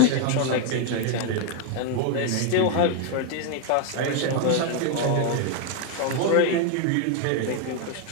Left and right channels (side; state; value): both; different; correlation 0.01